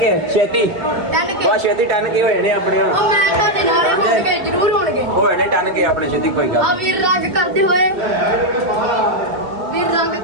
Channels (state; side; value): late; left; 2.1 ms